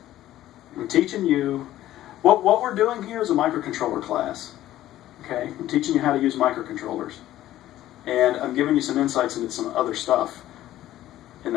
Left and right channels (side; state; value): right; quieter; 13.9 dB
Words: I'm teaching you, what we're doing here is a microcontroller class. Okay? I'm teaching you how to use microcontrollers. And I'm giving you some insights into some other stuff in